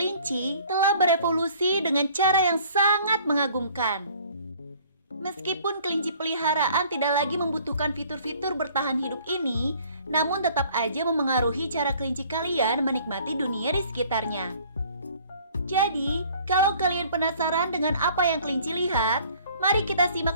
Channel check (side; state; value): both; inverted; correlation -0.54